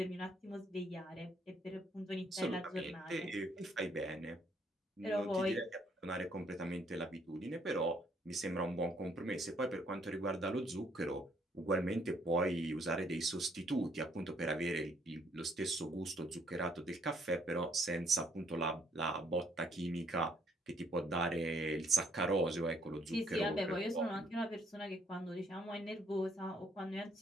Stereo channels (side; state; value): both; normal; correlation 0.68